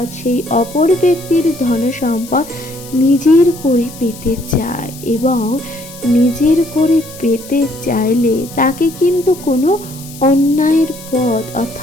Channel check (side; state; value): left; noise; hiss, 17 dB below the sound